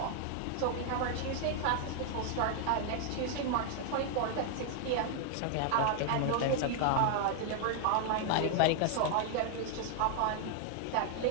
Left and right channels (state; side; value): different; both; correlation 0.00